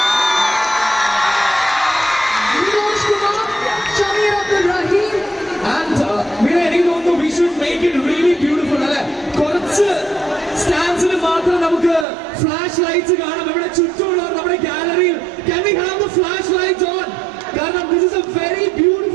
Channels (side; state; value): left; drops out; at 12.1 s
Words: Nikosh Kumar, Shameer Abdul Rahim. And എനിക്ക് തോന്നുന്നു we should make it really beautiful. അല്ലെ, കുറച്ച് സ്റ്റാൻഡ്സിൽ മാത്രം നമുക്ക് ഫ്ലാഷ് ലൈറ്റ്സ് കാണാം. ഇവിടെ ചുറ്റുമുള്ള നമ്മുടെ ഗാലറിയിൽ can we have the flash lights on? കാരണം this is a very